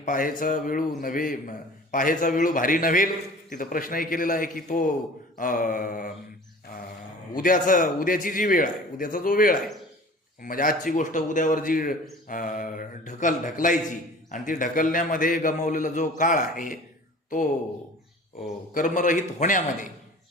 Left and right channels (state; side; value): normal; both; correlation 0.44